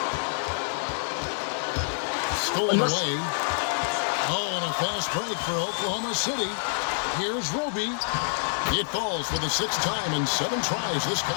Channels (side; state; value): right; silent; digital silence